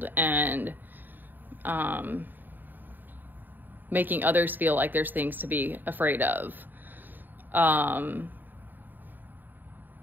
and making others feel like there's things to be afraid of.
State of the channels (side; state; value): left; late; 0.090 ms